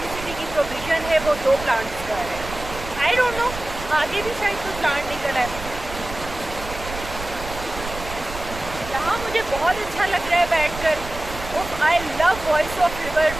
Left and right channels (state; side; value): noise; right; rumble, 11 dB below the sound